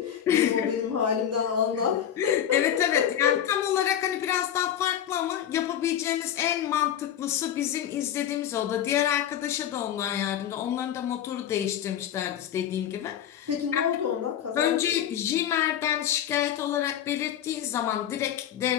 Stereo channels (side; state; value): right; quieter; 10.1 dB